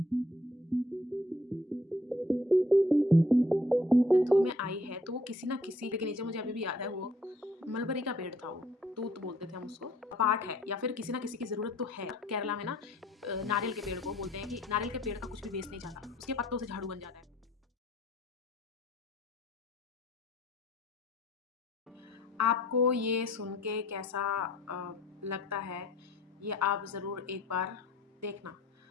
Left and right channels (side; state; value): both; normal; correlation 0.60